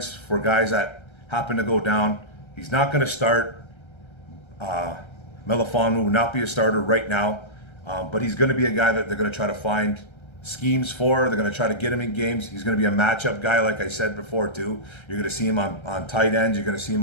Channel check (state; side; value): late; right; 1.3 ms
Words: for guys that happen to go down. He's not going to start. Melifonwu will not be a starter right now, but he's going to be a guy that they're going to try to find schemes for. They're going to try to get him in games. He's going to be a matchup guy, like I said before, too. You're going to see him on tight ends. You're going to see